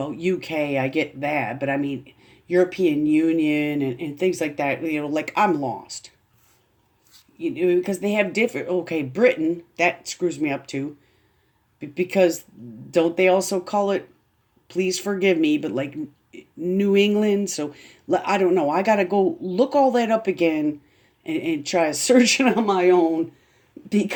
UK, I get that, but I mean, European Union and things like that, like I'm lost. Because they have different, okay, Britain, that screws me up too. Because don't they also call it, please forgive me, but like New England? So I don't know. I got to go look all that up again and try to search it on my own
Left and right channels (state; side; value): identical; both; correlation 1.00